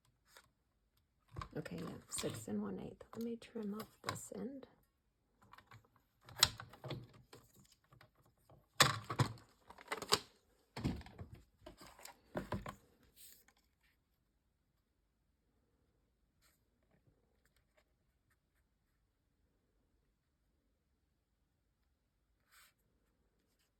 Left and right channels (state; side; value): identical; both; correlation 1.00